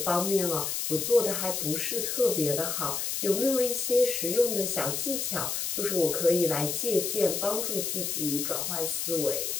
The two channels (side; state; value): left; noise; hiss, 2 dB below the sound